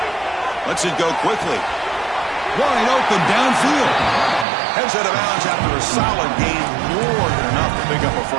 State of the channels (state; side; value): drops out; left; at 4.5 s